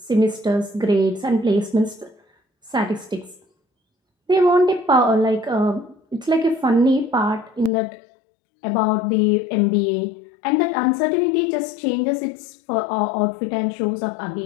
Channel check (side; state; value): right; drops out; at 7.7 s